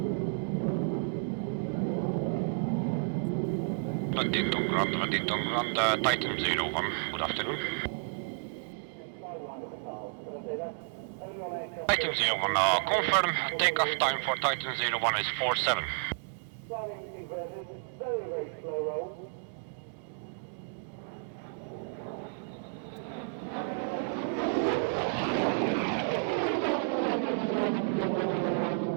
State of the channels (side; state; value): left; silent; digital silence